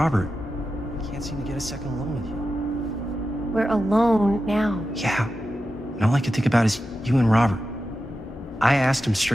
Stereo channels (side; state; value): both; normal; correlation 0.91